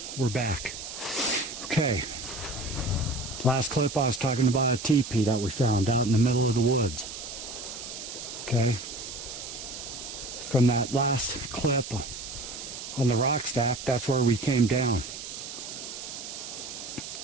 we're back. Okay. Last clip I was talking about a teepee that we found out in the middle of the woods. Okay. From that last clip on the rock stack, that's where we came down.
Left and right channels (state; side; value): noise; right; hiss, 9 dB below the sound